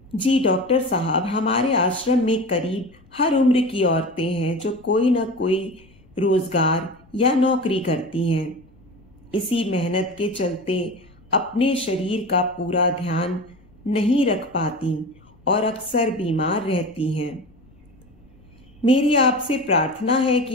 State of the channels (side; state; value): left; noise; rumble, 28 dB below the sound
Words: जी डॉक्टर साहब, हमारे आश्रम में करीब हर उम्र की औरतें हैं जो कोई ना कोई रोजगार या नौकरी करती हैं। इसी मेहनत के चलते अपने शरीर का पूरा ध्यान नहीं रख पाती और अक्सर बीमार रहती हैं। मेरी आपसे प्रार्थना है